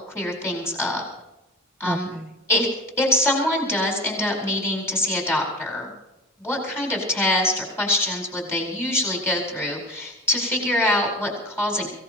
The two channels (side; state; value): both; normal; correlation 0.33